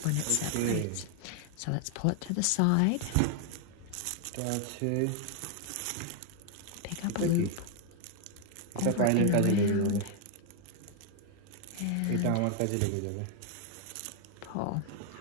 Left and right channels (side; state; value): both; different; correlation 0.00